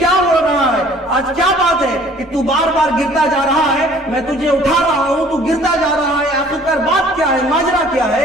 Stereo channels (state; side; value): normal; both; correlation 0.54